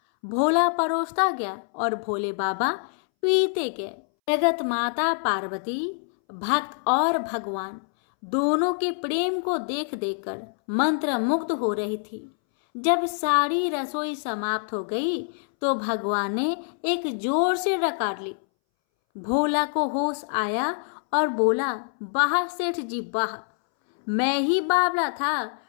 भोला परोसता गया और भोले बाबा पीते गए। जगत माता पार्वती, भक्त और भगवान दोनों के प्रेम को देख देखकर मंत्रमुग्ध हो रही थी। जब सारी रसोई समाप्त हो गई तो भगवान ने एक जोर से डकार ली। भोला को होश आया और बोला, वाह सेठ जी वाह, मैं ही बावला था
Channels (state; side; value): silent; right; 61 dB below the other